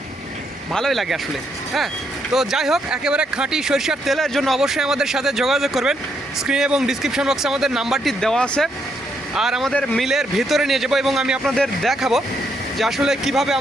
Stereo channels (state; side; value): normal; both; correlation 0.76